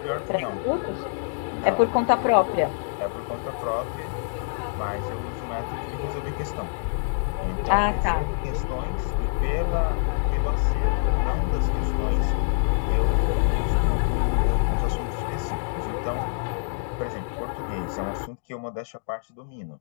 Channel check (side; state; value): right; silent; digital silence